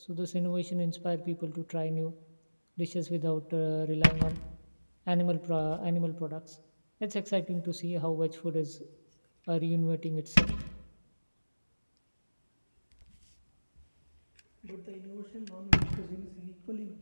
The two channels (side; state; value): both; inverted; correlation -1.00